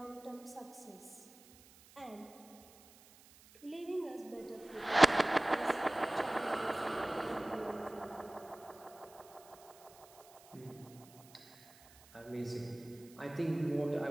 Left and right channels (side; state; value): right; noise; hiss, 23 dB below the sound